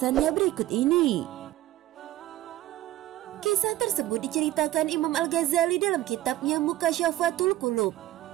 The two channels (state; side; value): quieter; left; 14.8 dB